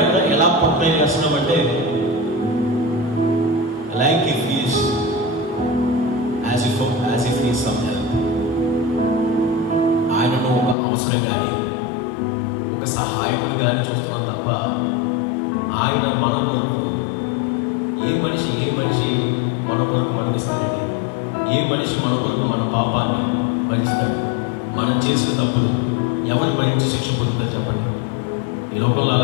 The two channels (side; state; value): right; drops out; at 10.8 s